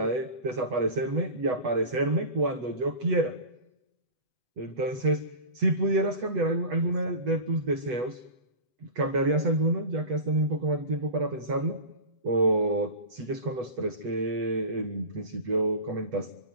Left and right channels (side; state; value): left; late; 8.1 ms